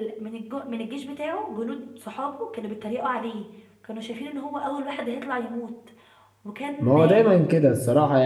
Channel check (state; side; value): identical; both; correlation 1.00